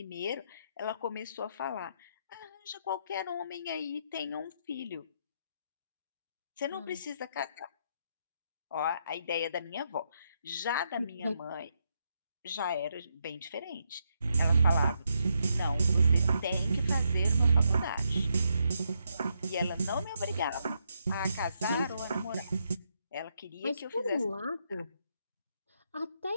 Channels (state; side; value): inverted; both; correlation -0.79